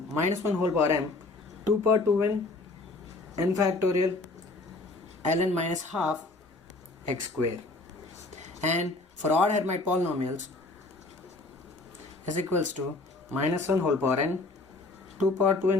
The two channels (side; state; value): right; quieter; 3.2 dB